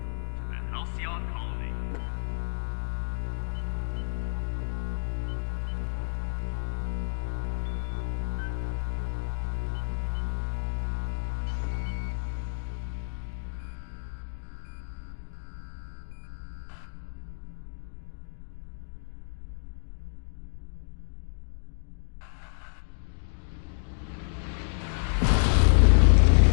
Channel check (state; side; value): silent; right; digital silence